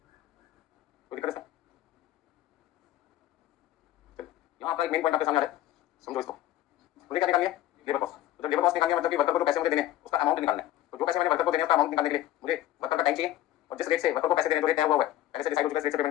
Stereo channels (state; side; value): quieter; right; 13.5 dB